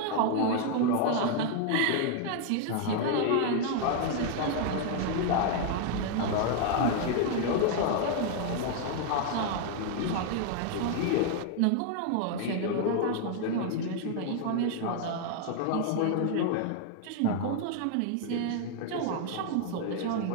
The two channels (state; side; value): different; both; correlation 0.00